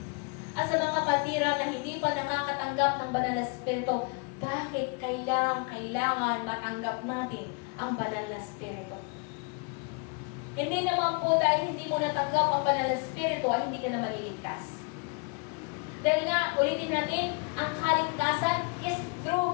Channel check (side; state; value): right; quieter; 34.2 dB